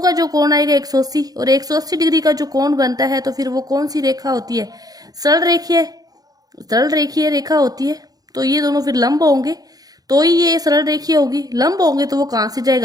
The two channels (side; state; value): left; late; 0.18 ms